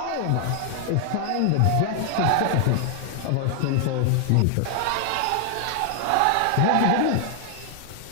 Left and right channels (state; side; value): different; both; correlation 0.00